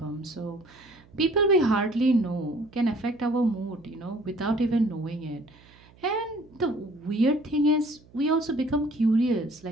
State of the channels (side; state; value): right; noise; hum, 26 dB below the sound